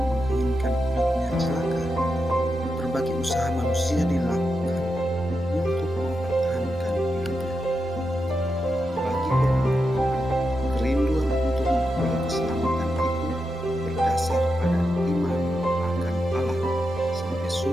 menginginkan hidupnya celaka. Berbagai usaha manusia dilakukan untuk mempertahankan hidupnya. Bagi orang beriman, kerinduan untuk memperoleh keselamatan itu berdasar pada iman akan Allah sebagai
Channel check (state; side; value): normal; both; correlation 0.87